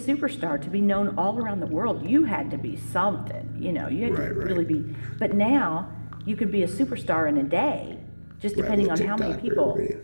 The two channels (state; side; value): inverted; both; correlation -1.00